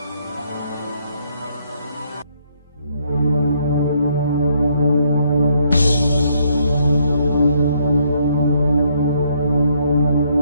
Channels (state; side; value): inverted; both; correlation -0.70